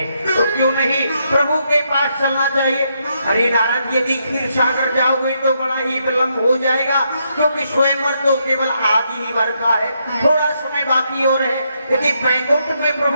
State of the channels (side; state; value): both; inverted; correlation -0.78